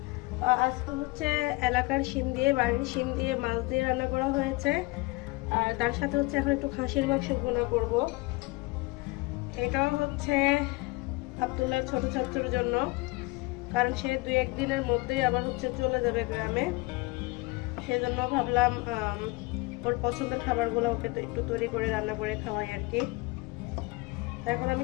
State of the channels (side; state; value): right; quieter; 23.7 dB